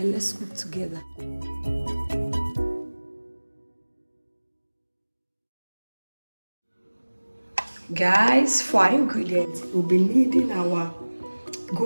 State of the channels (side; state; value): both; inverted; correlation -1.00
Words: let's cook together. Guys, for our ingredients, we'll be needing our